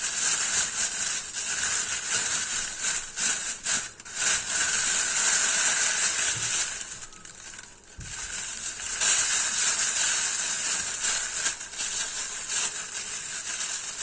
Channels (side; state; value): both; identical; correlation 1.00